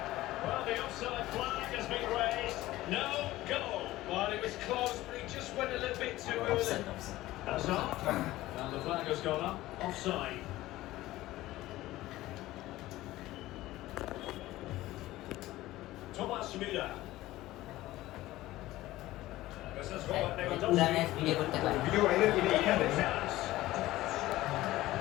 Well, the offside flag has been raised. No goal. Well, it was close, but he just went a little bit too early. Hazard. And the flag has gone up. Offside. Thomas Müller. This is Robert পুরা Lewandowski. Match video করতে পারি video বাইরে video এখানে Chance.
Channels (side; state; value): right; quieter; 16.6 dB